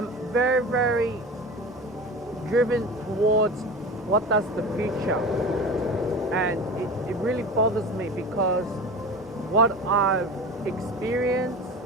very driven towards what does the future, and it really bothers me because what I've experienced,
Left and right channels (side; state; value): both; normal; correlation 0.32